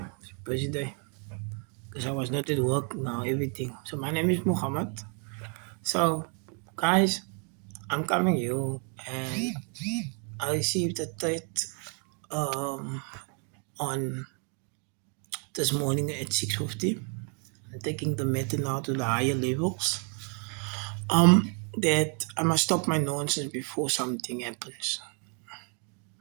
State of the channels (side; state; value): left; quieter; 38.0 dB